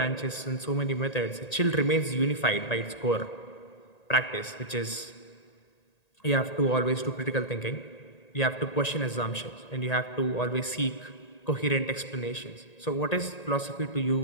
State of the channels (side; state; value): right; late; 1.8 ms